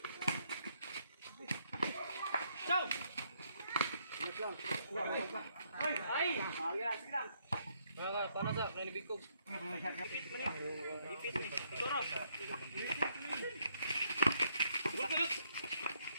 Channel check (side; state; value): both; inverted; correlation -0.73